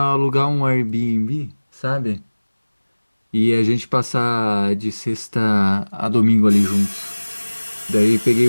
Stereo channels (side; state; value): both; inverted; correlation -1.00